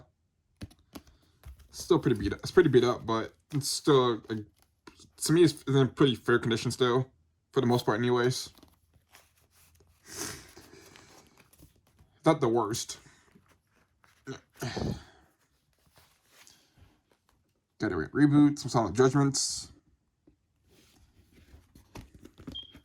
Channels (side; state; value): both; identical; correlation 1.00